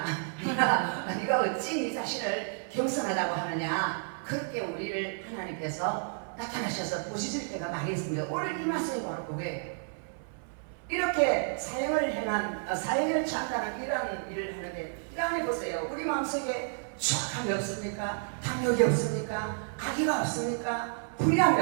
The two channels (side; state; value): left; silent; 57 dB below the other